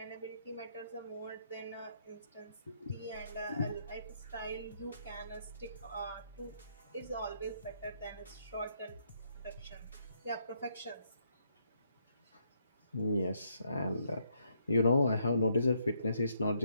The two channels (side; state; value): both; inverted; correlation -0.74